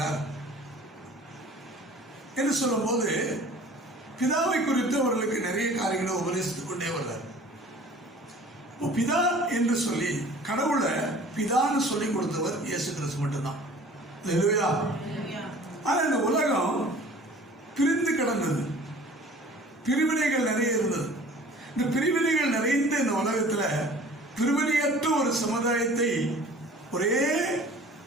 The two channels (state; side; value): normal; both; correlation 0.47